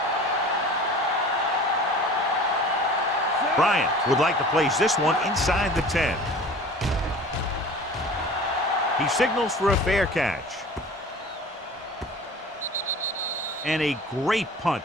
Bryant would like to place this one inside the 10. He signals for a fair catch. And a great punt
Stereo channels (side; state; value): both; normal; correlation 0.42